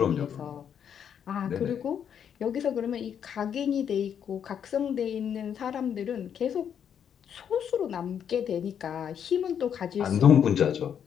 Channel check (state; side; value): quieter; right; 8.4 dB